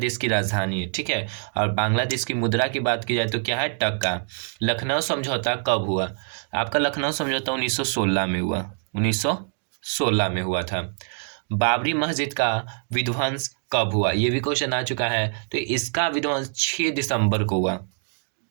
की राजधानी है, ठीक है। और बांग्लादेश की मुद्रा की बात की जाए तो क्या है? टका। लखनऊ समझौता कब हुआ? आपका लखनऊ समझौता 1916 में हुआ। 1916 में हुआ था। बाबरी मस्जिद का विध्वंस कब हुआ? ये भी क्वेश्चन आ चुका है। तो इसका विध्वंस 6 दिसंबर को हुआ।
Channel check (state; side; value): silent; left; 59 dB below the other